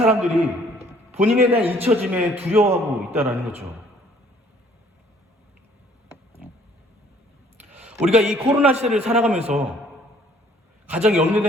본인에 대한 잊혀짐에 두려워하고 있다는 거죠. 우리가 이 코로나 시대를 살아가면서 가장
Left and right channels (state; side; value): normal; both; correlation 0.59